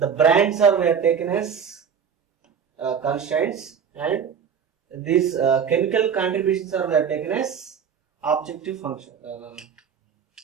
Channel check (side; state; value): left; quieter; 7.2 dB